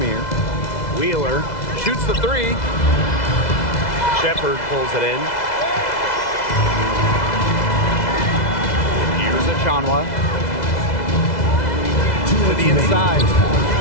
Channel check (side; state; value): right; late; 2.0 ms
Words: Wheeler shoots the 3. Shepard pulls it in. Here's a Shanwa. To the inside.